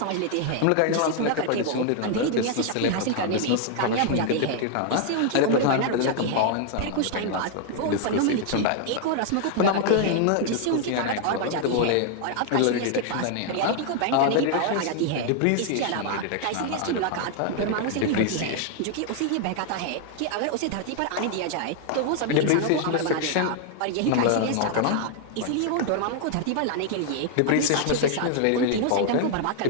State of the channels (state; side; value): different; both; correlation 0.00